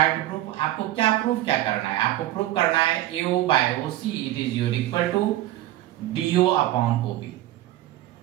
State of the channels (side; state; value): left; quieter; 15.1 dB